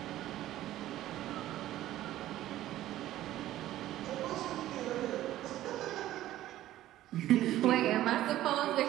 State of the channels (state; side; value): quieter; left; 14.1 dB